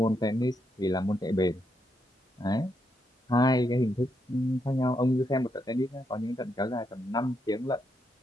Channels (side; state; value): both; normal; correlation 0.80